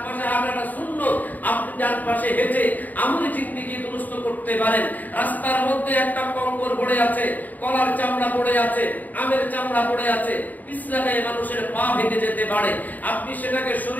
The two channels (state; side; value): late; right; 0.082 ms